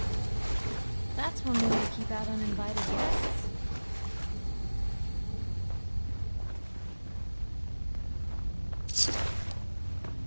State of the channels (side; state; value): both; inverted; correlation -1.00